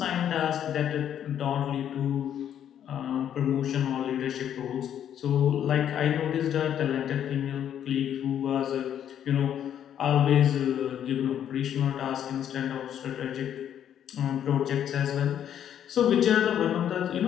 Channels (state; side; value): quieter; right; 9.8 dB